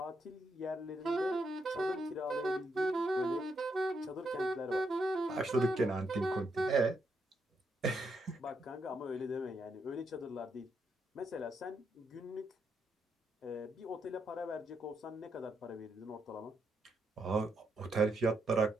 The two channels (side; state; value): both; normal; correlation 0.79